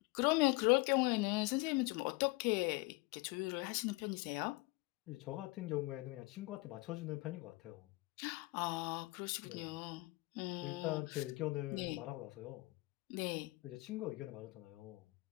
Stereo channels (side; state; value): right; quieter; 23.5 dB